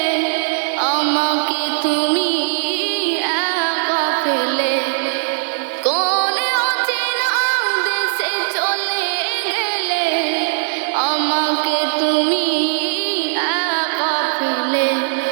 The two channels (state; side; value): silent; left; digital silence